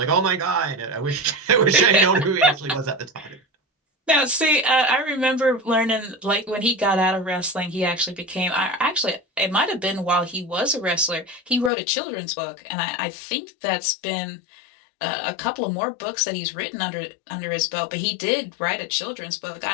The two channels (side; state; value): right; drops out; at 11.7 s